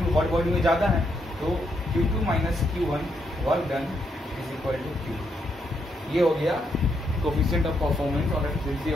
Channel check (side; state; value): both; normal; correlation 0.78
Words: hot body में ज्यादा है तो Q2 minus Q1 work done is equal to Q। ये हो गया कोफिशिएंट ऑफ परफॉर्मेंस और efficiency